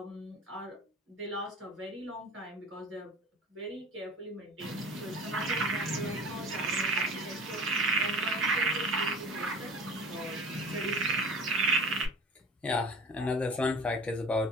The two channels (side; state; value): both; normal; correlation 0.38